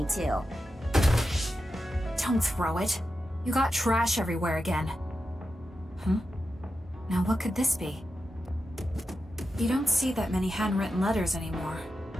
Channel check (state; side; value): normal; both; correlation 0.90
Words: too. Don't throw it. You got trash everywhere again. Now what could this be? You don't see that many handwritten letters anymore.